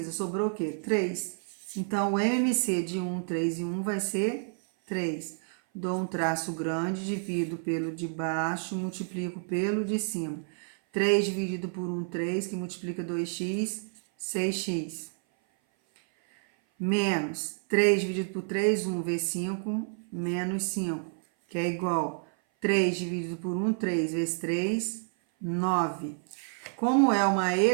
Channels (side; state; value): left; silent; 56 dB below the other